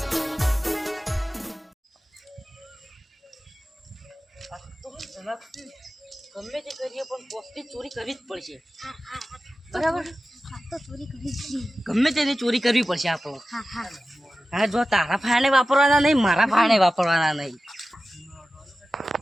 ગમે તે કરીએ પણ પોસ્ટની ચોરી કરવી જ પડશે બરાબર ગમે તેની ચોરી કરવી પડશે આપણો હા જો તારા ફાયણે વાપરવાના નહીં મારા ફાયણે વાપરવાના નહીં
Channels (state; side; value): normal; both; correlation 0.95